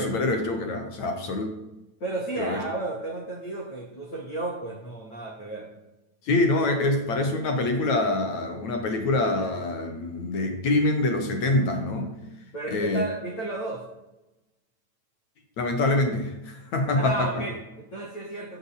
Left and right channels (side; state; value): right; late; 9.0 ms